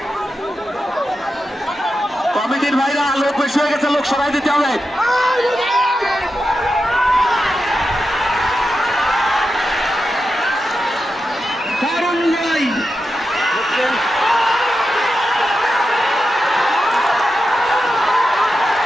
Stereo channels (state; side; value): normal; both; correlation 0.89